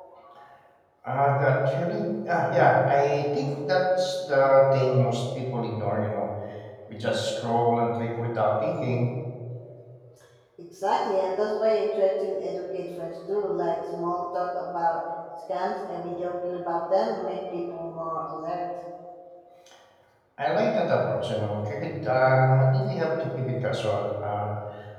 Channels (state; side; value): identical; both; correlation 1.00